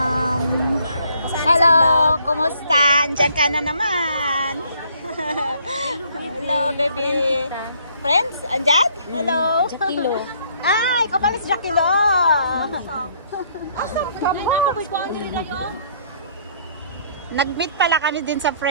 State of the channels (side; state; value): both; inverted; correlation -0.64